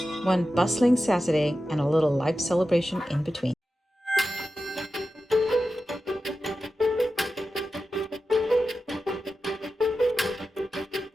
1 bustling Saturday, and a little life celebration in between.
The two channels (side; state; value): both; normal; correlation 0.92